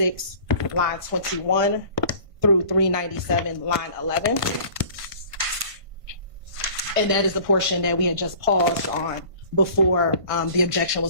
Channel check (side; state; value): left; late; 1.5 ms